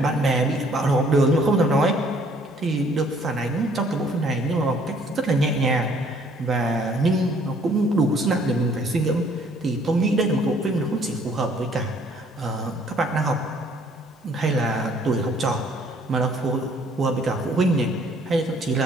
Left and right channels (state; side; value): normal; both; correlation 0.61